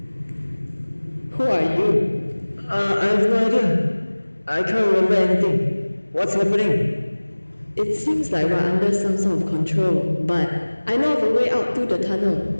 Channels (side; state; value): both; inverted; correlation -1.00